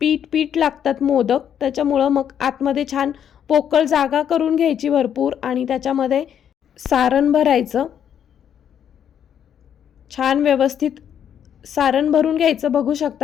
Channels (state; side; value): quieter; right; 9.0 dB